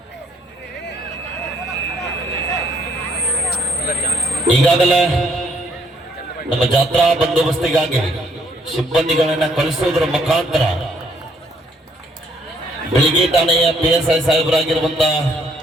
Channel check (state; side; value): normal; both; correlation 0.67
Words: ಈಗಾಗಲೇ ನಮ್ಮ ಜಾತ್ರಾ ಬಂದೋಬಸ್ತಿಗಾಗಿ ಸಿಬ್ಬಂದಿಗಳನ್ನ ಕಳಿಸುವುದರ ಮುಖಾಂತರ ಬೆಳಿಗ್ಗೆ ಠಾಣೆಯ PSI ಸಾಹೇಬರಾಗಿರುವಂತ